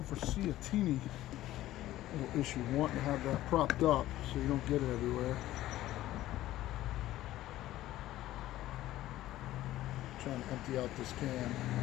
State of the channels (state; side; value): quieter; right; 14.9 dB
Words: foresee a teeny little issue wanting to have that propped up so you don't get it everywhere. I'm trying to empty out this can.